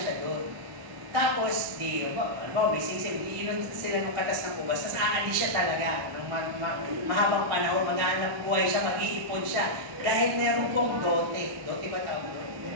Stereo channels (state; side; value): late; left; 1.4 ms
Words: doon. Tapos, may singsing, iinon sila ng katas ng ubas, tapos aalis siya talaga. Ng mahabang panahon, maghahanap buhay siya, mag-iipon siya. Dahil meron pong dote. Dote ba tawag?